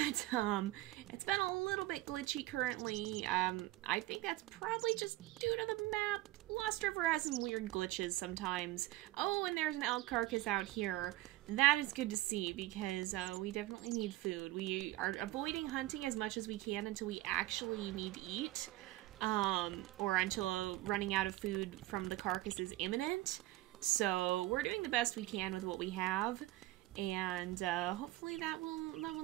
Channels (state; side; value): quieter; left; 17.1 dB